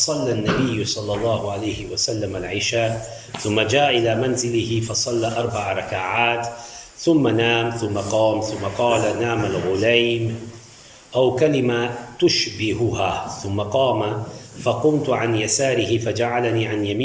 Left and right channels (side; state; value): both; identical; correlation 1.00